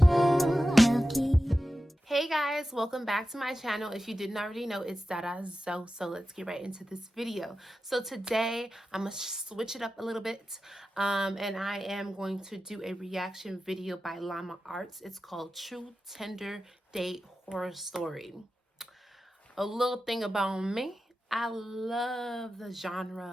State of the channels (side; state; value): both; normal; correlation 0.93